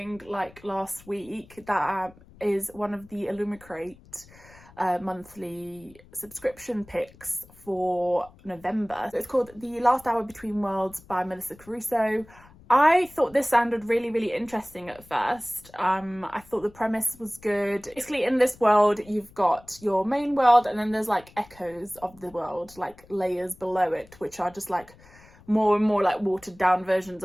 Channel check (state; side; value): noise; left; rumble, 24 dB below the sound